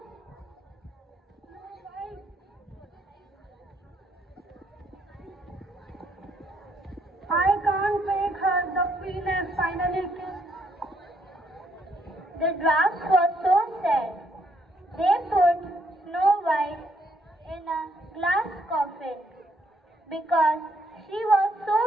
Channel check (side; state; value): both; normal; correlation 0.71